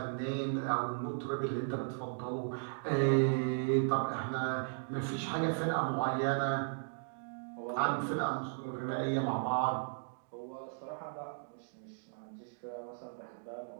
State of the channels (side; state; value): left; silent; digital silence